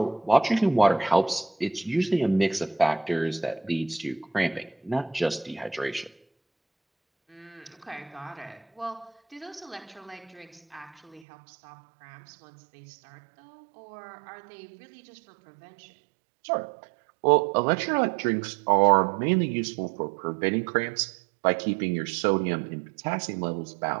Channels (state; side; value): drops out; left; at 11.2 s